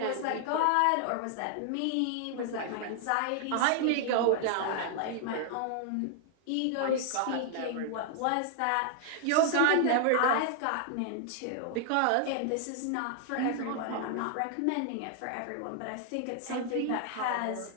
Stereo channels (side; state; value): both; different; correlation 0.00